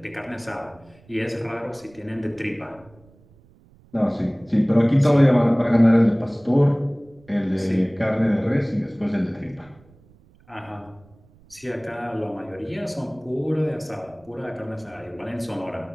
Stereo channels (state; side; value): noise; right; rumble, 28 dB below the sound